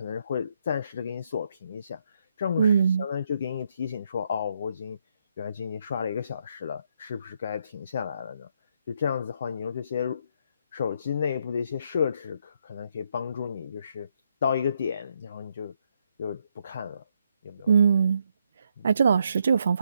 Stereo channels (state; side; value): inverted; both; correlation -0.76